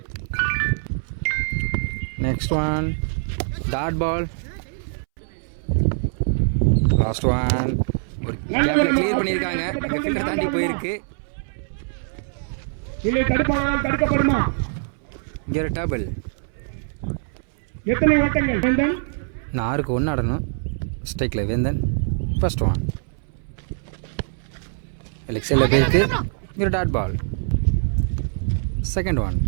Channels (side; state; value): left; silent; 63 dB below the other